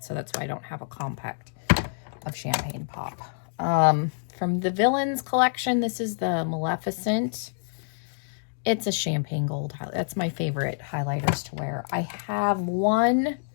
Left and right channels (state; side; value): silent; right; digital silence